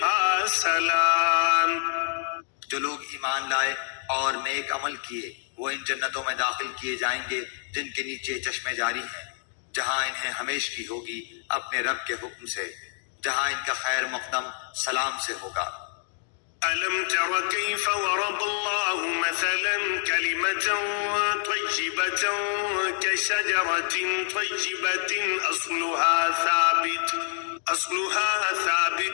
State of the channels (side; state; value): right; silent; 60 dB below the other